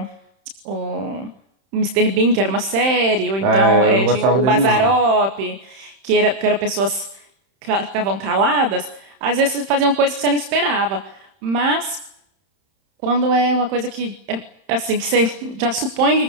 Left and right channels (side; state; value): left; late; 31 ms